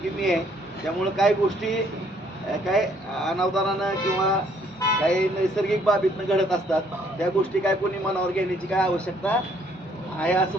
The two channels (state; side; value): normal; both; correlation 0.65